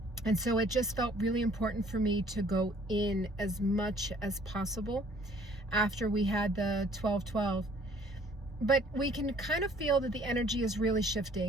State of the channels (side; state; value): both; normal; correlation 0.57